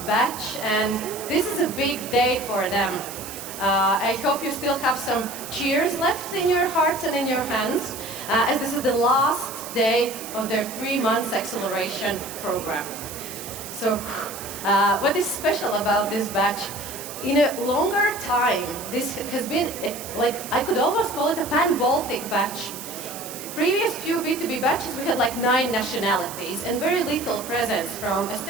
batch, and this is a big day for them. I hope you still have some cheers left in your hearts and in your hands, as this is the last day of their 3 months acceleration program. So, what is special about this batch? In a longer time, this has been, like, I could almost call it a pan-Baltic batch. Previous few B2B batches, we had like 9 nationalities and very little presence from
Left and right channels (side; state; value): right; noise; hiss, 11 dB below the sound